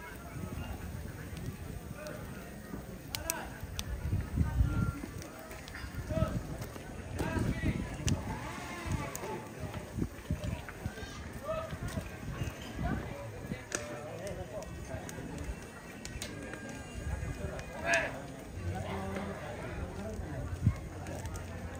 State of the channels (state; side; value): identical; both; correlation 1.00